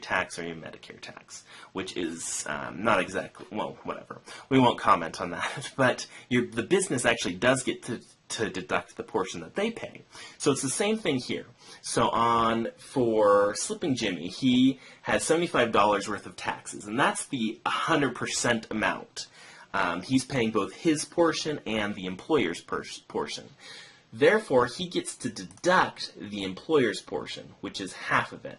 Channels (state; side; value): identical; both; correlation 1.00